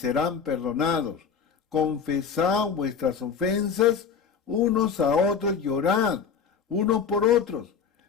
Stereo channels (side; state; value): right; quieter; 6.6 dB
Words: perdonados. Confesad vuestras ofensas unos a otros y orad unos por otros,